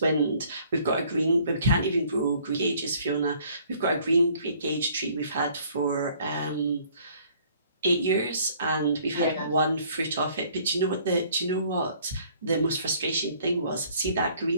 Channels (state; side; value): inverted; both; correlation -0.59